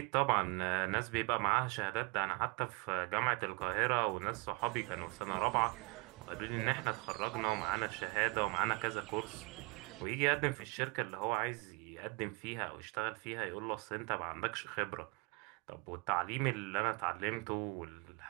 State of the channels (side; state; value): left; quieter; 29.3 dB